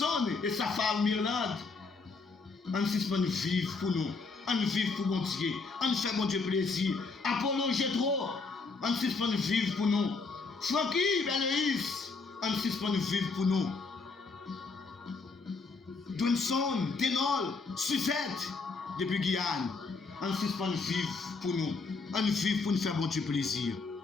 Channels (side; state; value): right; quieter; 4.2 dB